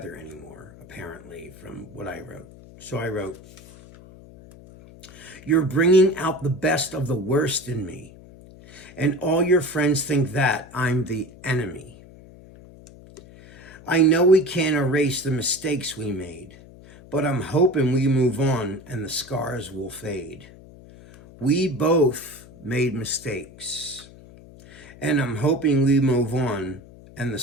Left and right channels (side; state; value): left; noise; hum, 20 dB below the sound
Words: anymore, apparently, from what I wrote. So I wrote, "You're bringing out the best of the worst in me, and all your friends think that I'm the enemy. I know we can't erase the mistakes we made, but I'm hoping we move on and the scars will fade. We both made mistakes, and I'm hoping we move on and the